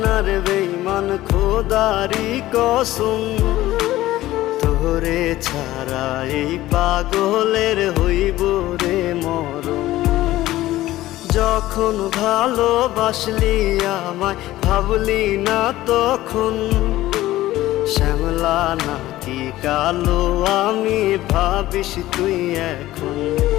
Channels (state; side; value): quieter; right; 15.8 dB